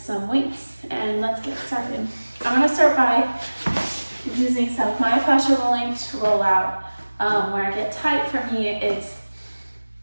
weights. And let's get started. I'm going to start by using some myofascial rolling to roll out. Where I get tight, for me, it's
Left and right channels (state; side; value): inverted; both; correlation -1.00